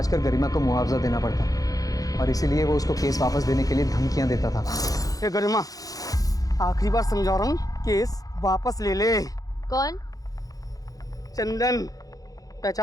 कर गरिमा को मुआवजा देना पड़ता और इसीलिए वो उसको केस वापस देने के लिए धमकियां देता था। ए गरिमा, आखिरी बार समझा रहा हूँ, केस वापस ले ले। कौन? चंदन,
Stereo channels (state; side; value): late; right; 0.17 ms